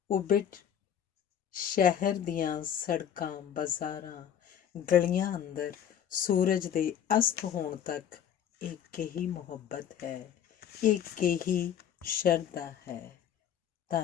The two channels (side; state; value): right; quieter; 9.3 dB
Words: ਉਬਿਟ ਸ਼ਹਿਰ ਦੀਆਂ ਸੜਕਾਂ, ਬਾਜ਼ਾਰਾਂ, ਗਲੀਆਂ ਅੰਦਰ ਸੂਰਜ ਦੇ ਅਸਤ ਹੋਣ ਤੱਕ ਇੱਕ ਹੀ ਮੁਹੱਬਤ ਹੈ, ਇੱਕ ਹੀ ਸ਼ਰਧਾ ਹੈ।